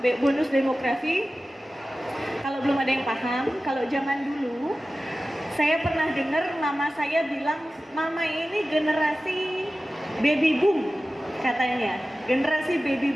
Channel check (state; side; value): normal; both; correlation 0.95